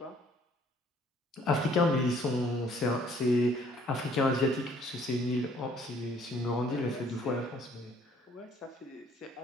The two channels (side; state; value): both; normal; correlation 0.60